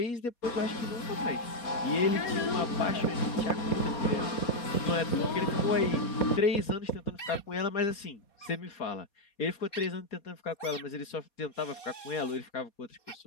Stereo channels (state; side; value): late; right; 4.2 ms